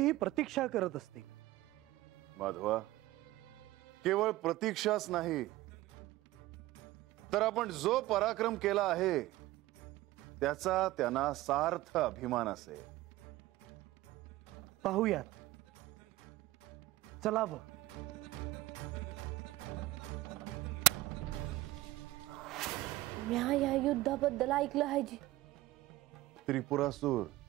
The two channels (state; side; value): quieter; left; 17.4 dB